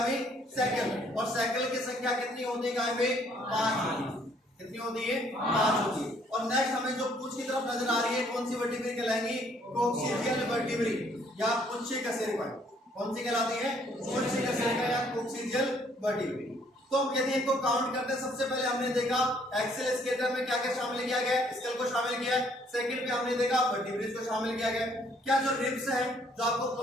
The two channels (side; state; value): both; normal; correlation 0.64